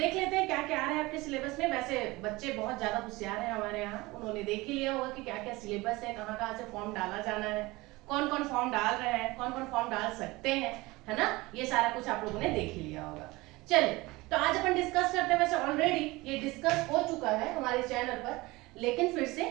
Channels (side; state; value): left; quieter; 21.6 dB